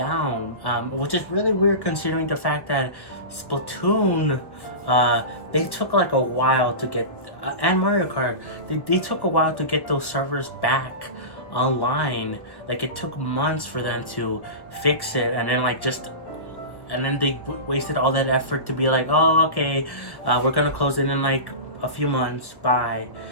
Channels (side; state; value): right; late; 1.3 ms